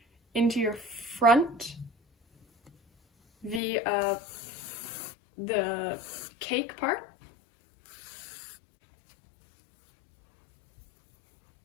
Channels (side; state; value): right; drops out; at 3.6 s